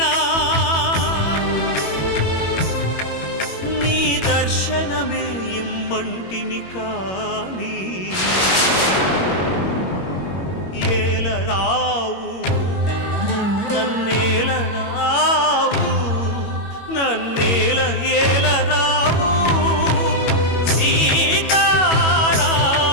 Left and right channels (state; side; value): late; right; 21 ms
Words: నీ దర్శనమే ఇమ్మంటిని కాని ఏలరావు నన్నేలరావు నన్నేల ఏలరావు సీతారామ